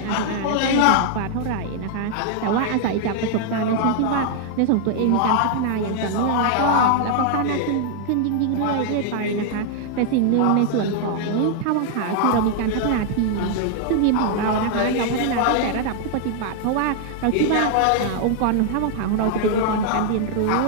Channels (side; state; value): both; different; correlation -0.01